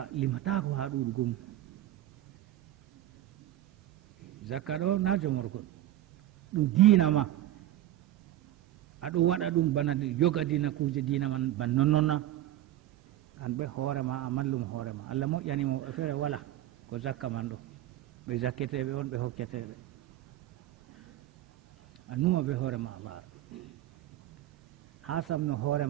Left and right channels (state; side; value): quieter; left; 13.8 dB